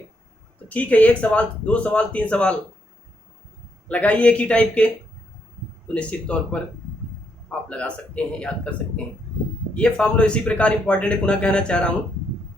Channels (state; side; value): normal; both; correlation 0.76